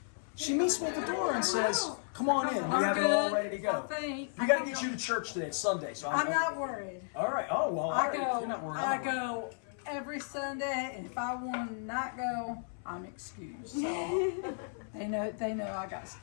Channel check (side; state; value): right; silent; 55 dB below the other